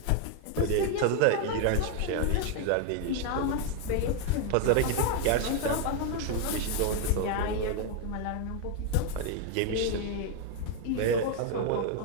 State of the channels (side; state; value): both; different; correlation 0.00